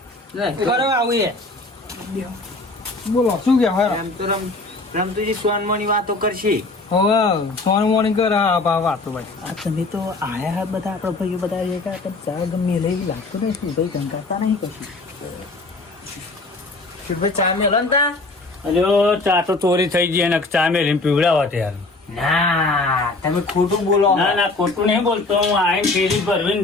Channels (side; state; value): right; quieter; 3.2 dB